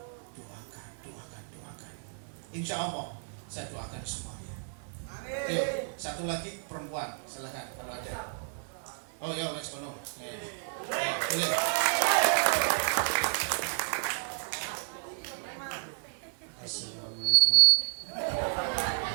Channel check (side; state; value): left; silent; 57 dB below the other